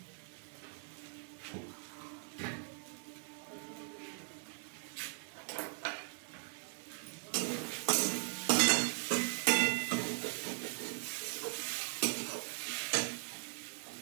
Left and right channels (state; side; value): silent; left; 52 dB below the other